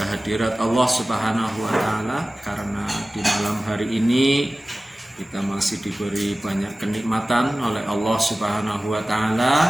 Allah Subhanahu wa taala karena di malam hari ini kita masih diberi banyak kenikmatan oleh Allah Subhanahu wa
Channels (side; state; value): both; normal; correlation 0.97